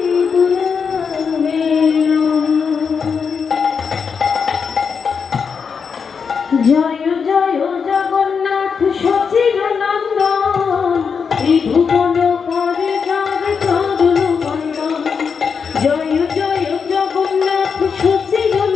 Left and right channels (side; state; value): right; quieter; 6.0 dB